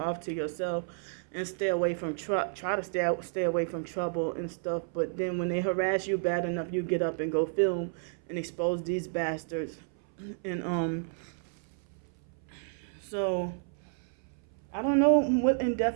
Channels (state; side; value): silent; left; 57 dB below the other